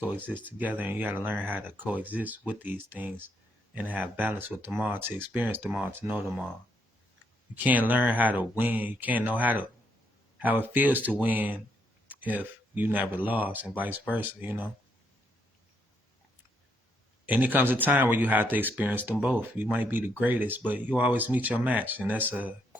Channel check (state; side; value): normal; both; correlation 0.75